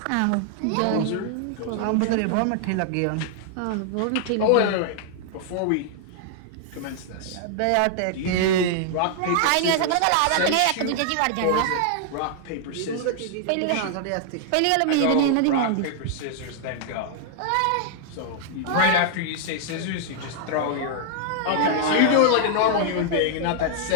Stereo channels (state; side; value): different; both; correlation -0.01